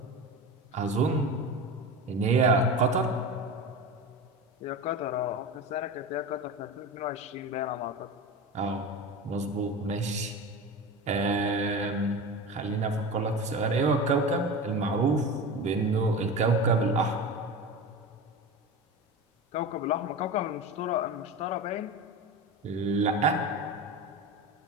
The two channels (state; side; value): normal; both; correlation 0.27